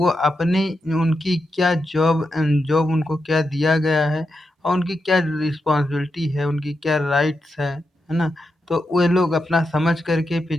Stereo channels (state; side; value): normal; both; correlation 0.86